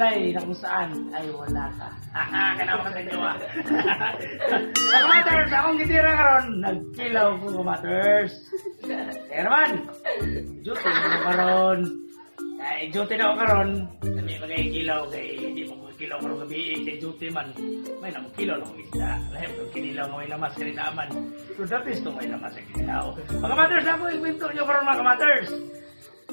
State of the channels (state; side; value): inverted; both; correlation -1.00